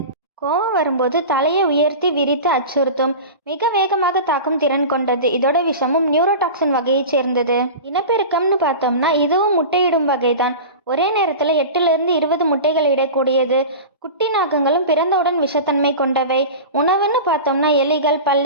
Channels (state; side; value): inverted; both; correlation -0.30